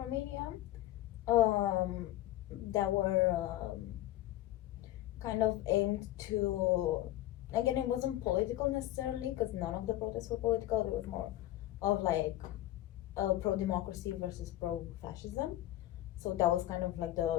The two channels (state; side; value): quieter; right; 14.9 dB